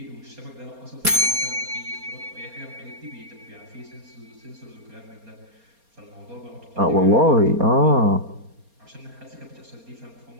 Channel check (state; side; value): late; left; 4.3 ms